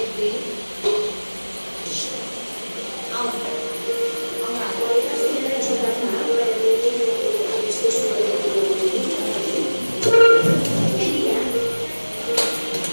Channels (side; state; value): both; inverted; correlation -1.00